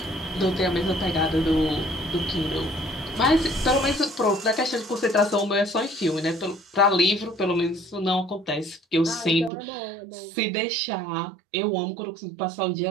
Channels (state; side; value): drops out; left; at 9.5 s